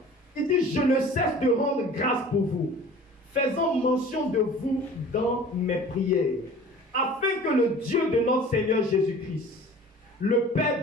Il dit, je ne cesse de rendre grâce pour vous, faisant mention de vous dans mes prières, afin que le Dieu de notre Seigneur Jésus-Christ, le Père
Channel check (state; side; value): normal; both; correlation 0.44